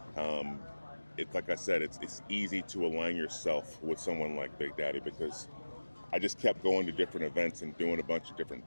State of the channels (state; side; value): inverted; both; correlation -1.00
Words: it's like I said, it's easy to align yourself with someone like Big Daddy, because I just kept going to different events and doing a bunch of different